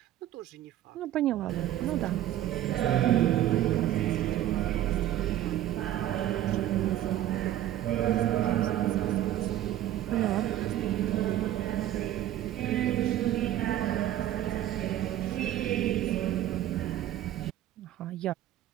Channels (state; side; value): quieter; left; 12.8 dB